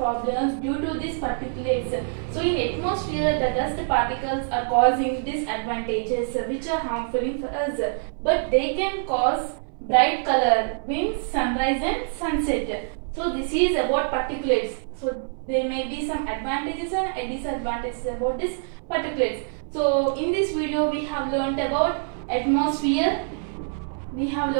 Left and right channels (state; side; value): silent; left; 62 dB below the other